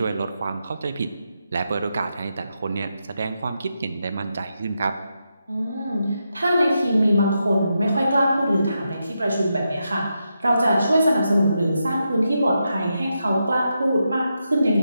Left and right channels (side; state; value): both; inverted; correlation -0.85